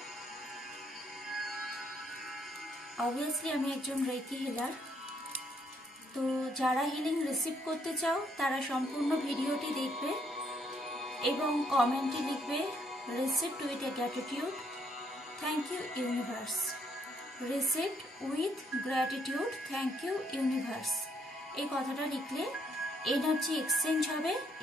অবভিয়াসলি আমি একজন রেকি হিলার, তো যারা হিলিং রিসিভ করতে চাও তারা সম্পূর্ণ ভিডিওটি দেখবে এবং কমেন্টে লিখবে received with a gratitude, thank you universe. Received with gratitude, thank you universe. এই কথাটা লিখলে এনার্জি এক্সচেঞ্জ হবে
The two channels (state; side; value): normal; both; correlation 0.71